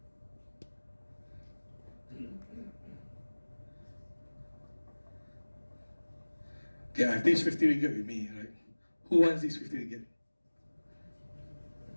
Okay, I have this 50 ringgit with me, right? Who wants this 50 ringgit?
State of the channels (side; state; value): both; inverted; correlation -1.00